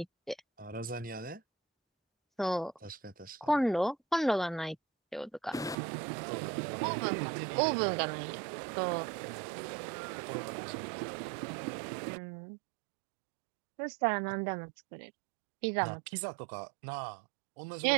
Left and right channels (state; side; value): drops out; left; at 5.8 s